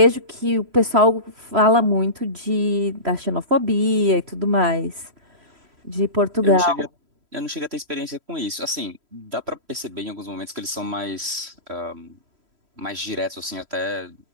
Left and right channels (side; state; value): left; late; 3.0 ms